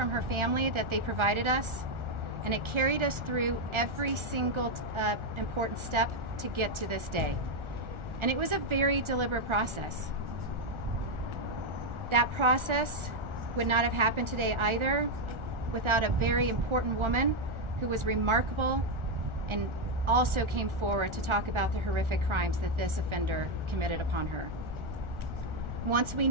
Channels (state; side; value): late; left; 1.4 ms